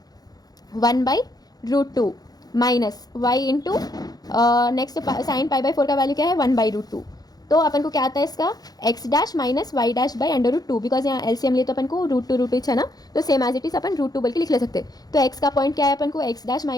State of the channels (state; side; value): late; right; 0.19 ms